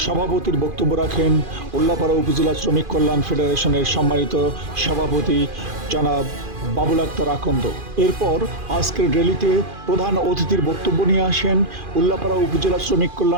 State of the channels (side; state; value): left; late; 2.5 ms